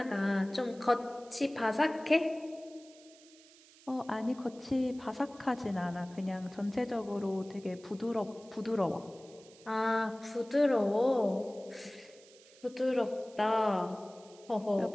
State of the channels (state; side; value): noise; right; hiss, 24 dB below the sound